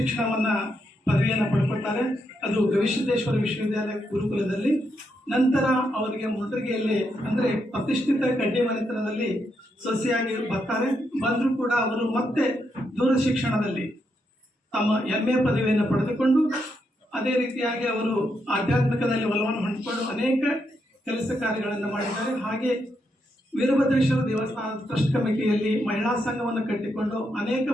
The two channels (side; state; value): both; normal; correlation 0.81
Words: ಪದವಿಯನ್ನು ಪಡ್ಕೊಳ್ತಾರೆ. ಅದು ಗವಿಸಿದ್ದೇಶ್ವರ ವಿಶ್ವವಿದ್ಯಾಲಯ ಗುರುಕುಲದಲ್ಲಿ. ನಂತರ ಅವರಿಗೆ ಮುಂಡ್ರಿಗೆಯಲ್ಲಿ ಅಂದರೆ ಪ್ರತಿಷ್ಠಿತ ಕಡ್ಡಿ ಮನೆತನದಲ್ಲಿ ಸೊಸೆಯಾಗಿ ಬರ್ತಾರೆ. ಬಂದರೂ ಕೂಡ ಅವರು ಮತ್ತೆ ದೂರ ಶಿಕ್ಷಣದಲ್ಲಿ ತಮ್ಮ MA ಪದವಿಯನ್ನು ಪಡೆದುಕೊಂಡು ಅದೇ ರೀತಿಯಾಗಿ ಅವರು ಆಧ್ಯಾತ್ಮಿಕದಲ್ಲಿ ಒಲವನ್ನು ಹೊಂದಿಕೊಂಡು ಅನೇಕ ಕೆಲಸ ಕಾರ್ಯಗಳನ್ನು ಮಾಡಿದ್ದಾರೆ. ಹಾಗೆ ವೀರಭದ್ರೇಶ್ವರ ದೇವಸ್ಥಾನದ ಟ್ರಸ್ಟ್ ಕಮಿಟಿಯಲ್ಲಿ ಮಹಿಳಾ ಸಂಘವನ್ನು ಕಟ್ಟಿಕೊಂಡು ಅನೇಕ